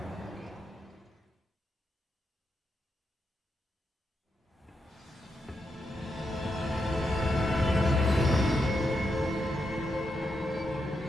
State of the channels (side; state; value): both; normal; correlation 0.84